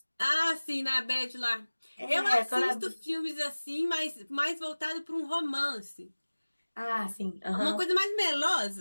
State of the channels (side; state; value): both; inverted; correlation -1.00